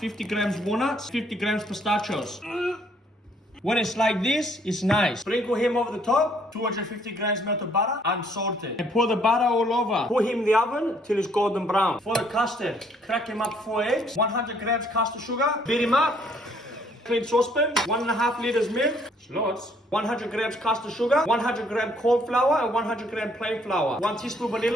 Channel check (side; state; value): both; normal; correlation 0.65